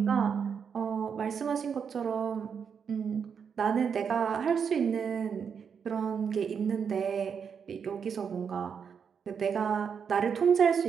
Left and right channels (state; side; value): quieter; left; 6.8 dB